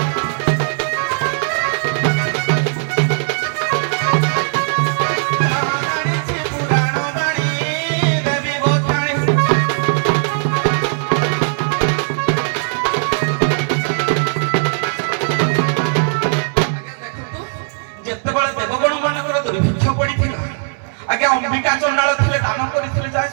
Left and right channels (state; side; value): silent; left; 66 dB below the other